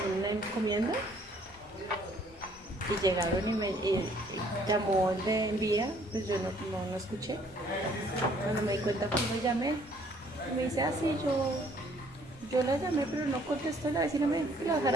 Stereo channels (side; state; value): both; normal; correlation 0.61